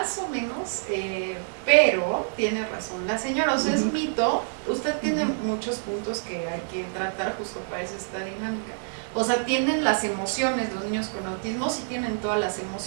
menos, pero tiene razón la señora, o sea, es mito. Usted tiene muchos puntos que hay que tratar justo para eso esta dinámica. O sea, tienen las emociones, los niños con autismo sí tienen todas las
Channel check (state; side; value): silent; left; digital silence